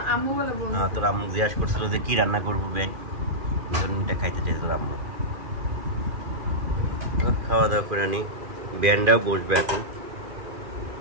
আম্মু বলে বলছে। হ্যাঁ তোর আম্মু জিজ্ঞাসা করছিল যে কি রান্না করবো বেন, এটা খাইতে চাইছে তোর আম্মু। খাওয়া দাওয়া করে আনি, ব্যান্ডাও বসবে এখন।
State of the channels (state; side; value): late; left; 2.4 ms